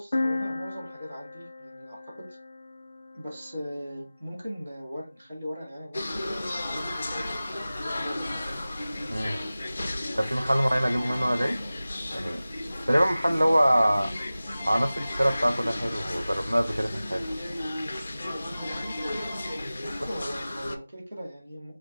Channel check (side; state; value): both; inverted; correlation -0.97